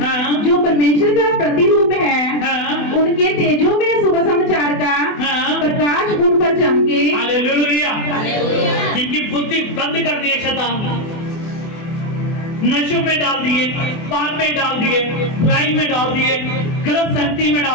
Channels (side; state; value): right; late; 24 ms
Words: जो परमेश्वर का प्रतिरूप है उनके तेजों में सुबह समाचार का प्रकाश उन पर चमके। हालेलुया। जिनकी बुद्धि बंद कर दी है शैतान, नशों में डाल दिए, पाप में डाल दिए, बुराई में डाल दिए, गलत संगति में